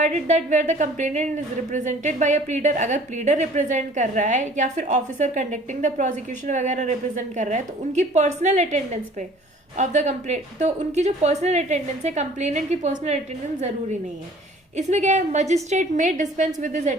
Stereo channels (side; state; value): both; normal; correlation 0.51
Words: that where the complainant is represented by a pleader, अगर प्लीडर रिप्रेजेंट कर रहा है या फिर ऑफिसर कंडक्टिंग द प्रोसिक्यूशन वगैरह रिप्रेजेंट कर रहा है, तो उनकी पर्सनल अटेंडेंस पे ऑफ द कंप्लेंट, तो उनकी जो पर्सनल अटेंडेंस है, कंप्लेनेंट की पर्सनल अटेंडेंस जरूरी नहीं है। इसमें क्या है, magistrate may dispense with his